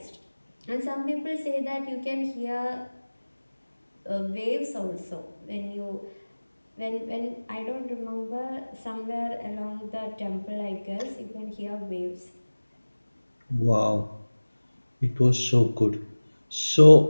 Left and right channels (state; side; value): inverted; both; correlation -1.00